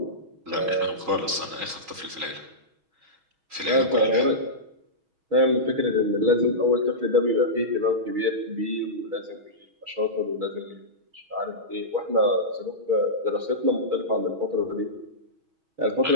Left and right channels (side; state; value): left; late; 6.2 ms